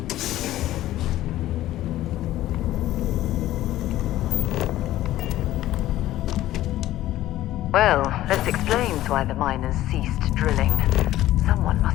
Well, this explains why the miners ceased drilling. Someone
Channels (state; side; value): quieter; right; 14.5 dB